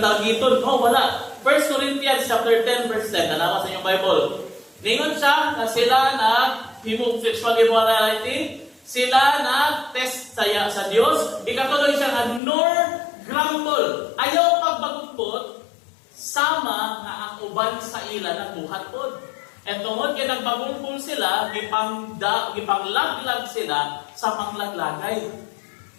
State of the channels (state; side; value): drops out; right; at 12.4 s